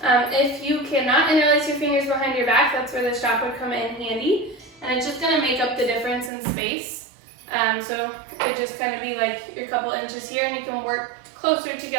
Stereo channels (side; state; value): left; drops out; at 6.3 s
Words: If you cannot interlace your fingers behind your back, that's where the strap would come in handy. And it's just going to make up the difference in space. So it would just kind of be like your couple inches here, and you can work closer